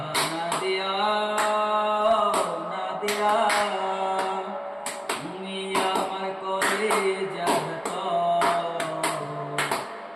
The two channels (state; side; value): identical; both; correlation 1.00